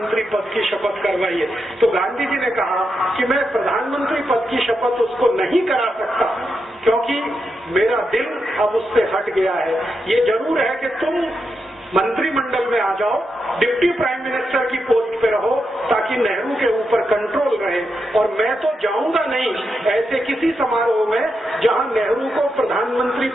पद की शपथ करवाइए। तो गांधी जी ने कहा कि मैं प्रधानमंत्री पद की शपथ उसको नहीं करा सकता क्योंकि मेरा दिल अब उससे हट गया है। ये जरूर है कि तुम मंत्रिमंडल में आ जाओ, डिप्टी प्राइम मिनिस्टर की पोस्ट पे रहो ताकि नेहरू के ऊपर कंट्रोल रहे, और मैं तो जाऊंगा नहीं ऐसे किसी समारोह में जहां नेहरू को प्रधानमंत्री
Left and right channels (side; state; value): both; normal; correlation 0.85